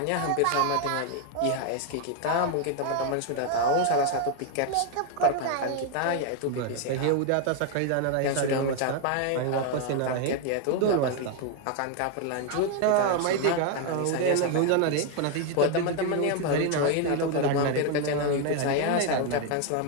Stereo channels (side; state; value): both; different; correlation 0.00